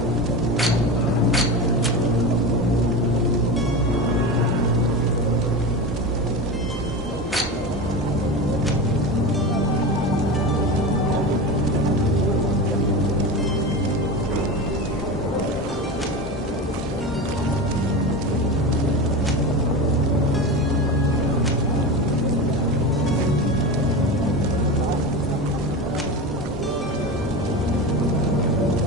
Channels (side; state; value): both; normal; correlation 0.24